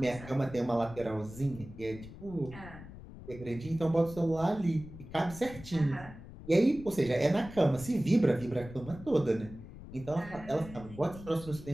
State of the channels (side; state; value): left; noise; rumble, 15 dB below the sound